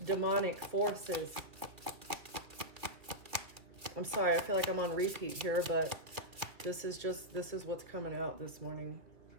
demonic forces. I'm sorry, I feel like I'm on repeat here, but this is what's coming out this morning.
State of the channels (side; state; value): left; late; 2.4 ms